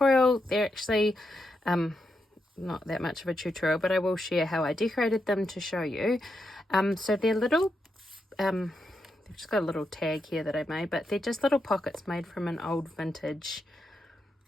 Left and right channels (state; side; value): normal; both; correlation 0.84